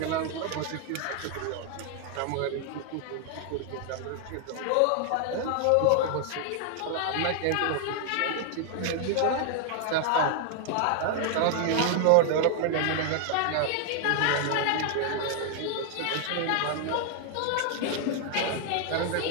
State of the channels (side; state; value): both; different; correlation 0.00